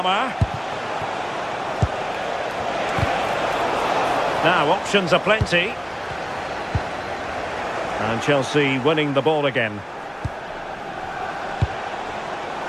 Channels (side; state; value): both; identical; correlation 1.00